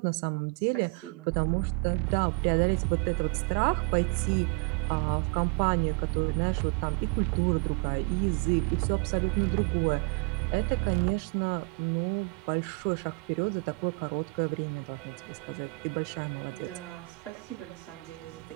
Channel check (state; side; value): quieter; left; 32.7 dB